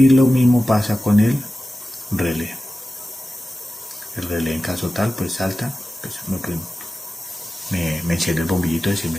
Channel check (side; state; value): both; normal; correlation 0.95